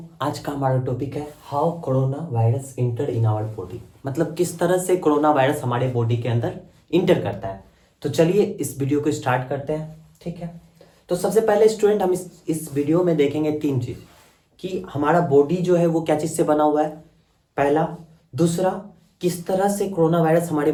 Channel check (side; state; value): both; identical; correlation 1.00